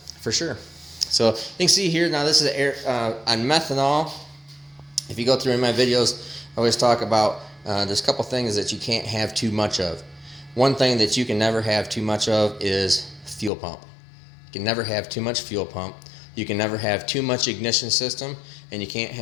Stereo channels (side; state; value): right; drops out; at 13.5 s